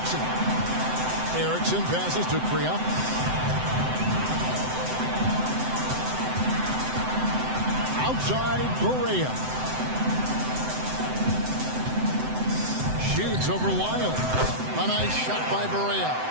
Erickson passes to Kriop. Outside, Barea. Shoots over Lyles. A nice shot by Barea.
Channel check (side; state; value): left; late; 7.8 ms